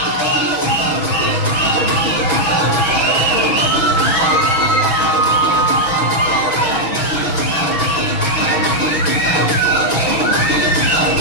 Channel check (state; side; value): late; right; 6.2 ms